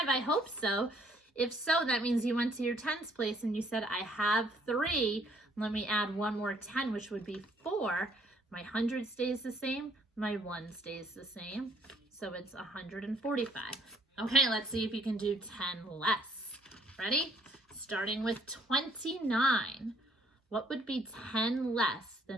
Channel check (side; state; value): both; normal; correlation 0.64